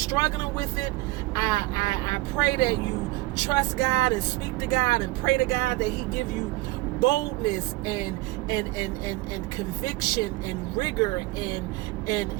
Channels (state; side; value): quieter; left; 19.9 dB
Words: with it, I pray that you trust God and speak to God and pray to God that he give you boldness and conviction and rigor and